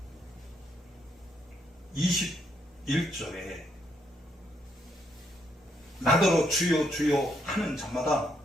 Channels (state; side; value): normal; both; correlation 0.75